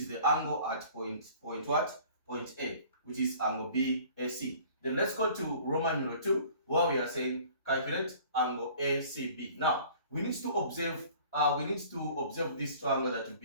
the angle at point what? Point A, which is angle BAC. Then let's go to Roman numeral 2, where we are saying calculate angle ACB. Now we need to observe this triangle that we've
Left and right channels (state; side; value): inverted; both; correlation -0.50